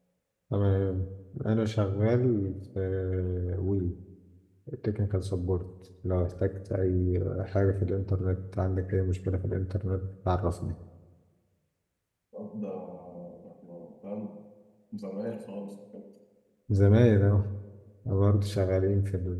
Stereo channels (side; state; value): both; identical; correlation 1.00